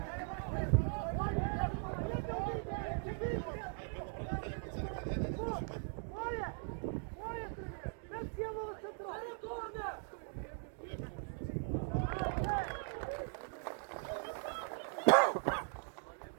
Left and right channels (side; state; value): left; silent; 51 dB below the other